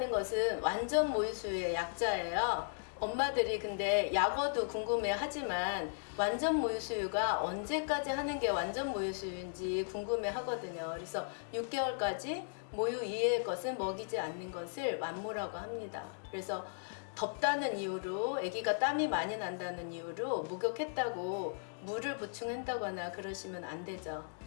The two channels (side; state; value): right; silent; digital silence